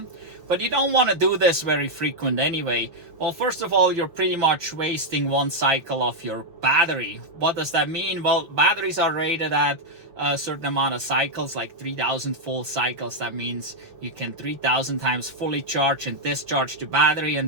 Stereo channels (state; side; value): late; left; 5.6 ms